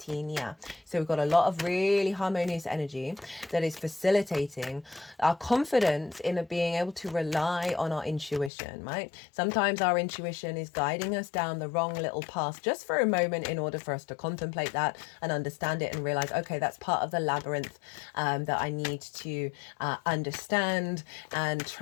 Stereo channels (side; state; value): right; drops out; at 8.5 s